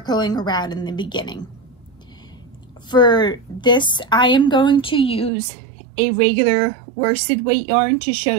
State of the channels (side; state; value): left; drops out; at 5.3 s